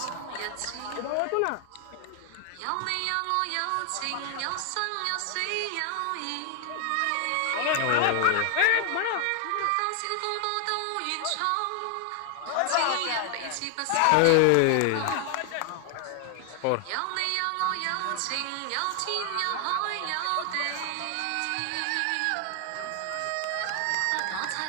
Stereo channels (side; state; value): both; different; correlation 0.00